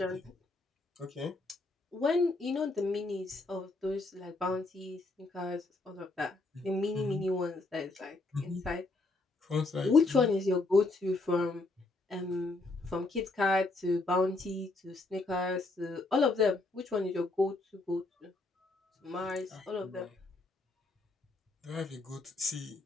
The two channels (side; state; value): right; quieter; 3.2 dB